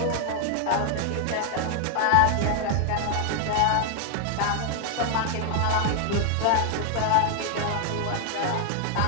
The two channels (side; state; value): both; different; correlation 0.00